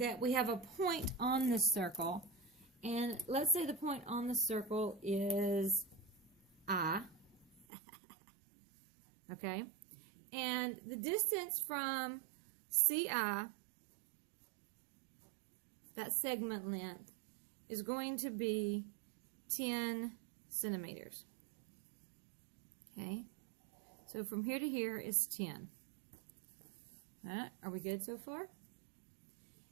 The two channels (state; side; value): drops out; left; at 7.7 s